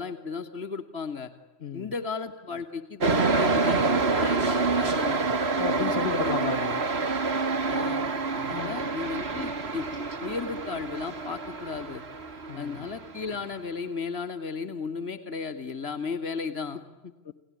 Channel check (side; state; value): left; late; 3.0 ms